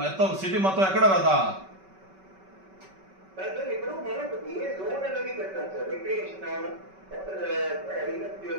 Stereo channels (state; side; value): late; left; 5.2 ms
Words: మొత్తం సిటీ మొత్తం ఎక్కడ రాదా? ఇప్పుడు మనకు ఏ జోన్ అనేది పెట్టాం సార్, రిక్రియేషన్